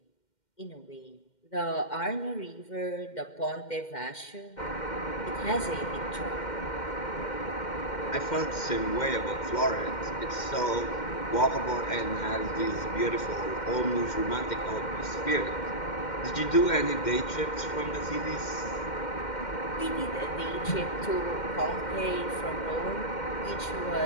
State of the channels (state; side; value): late; right; 2.1 ms